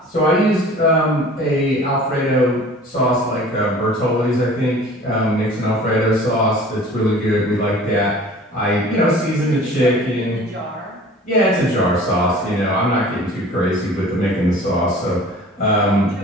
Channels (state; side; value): normal; both; correlation 0.45